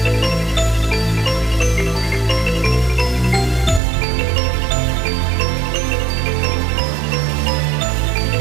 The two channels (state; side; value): drops out; left; at 3.8 s